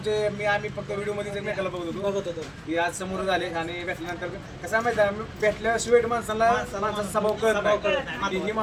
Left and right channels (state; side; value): identical; both; correlation 1.00